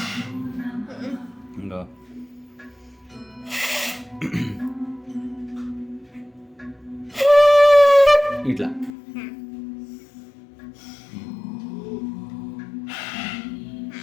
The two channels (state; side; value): drops out; right; at 8.9 s